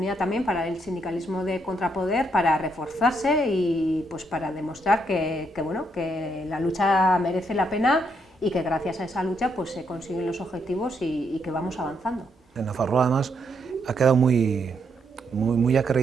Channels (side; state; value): both; normal; correlation 0.76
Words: también para el sindicalismo de contrapoder para reforzarse y pues para demostrar que la lucha merece la pena y que gracias a esa lucha pues se consiguen los objetivos y que vamos avanzando. En Nafarroa además ha quedado muy